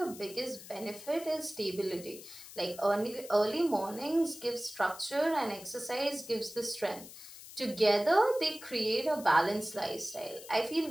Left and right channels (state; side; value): noise; left; hiss, 16 dB below the sound